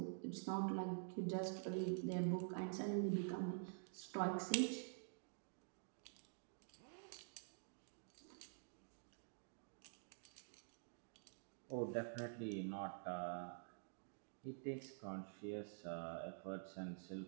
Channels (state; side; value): silent; left; digital silence